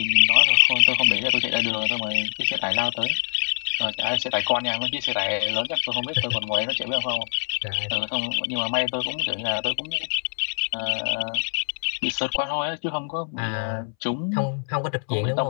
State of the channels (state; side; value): silent; right; 62 dB below the other